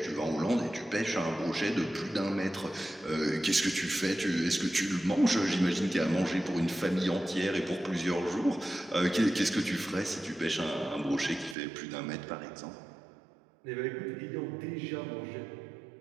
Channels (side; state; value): left; drops out; at 11.6 s